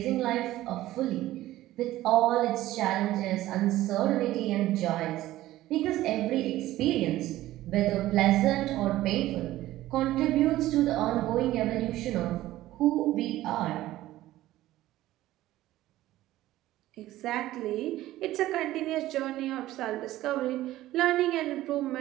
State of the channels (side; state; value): left; quieter; 15.4 dB